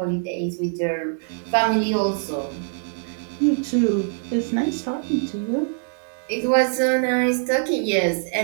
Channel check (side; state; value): left; silent; 59 dB below the other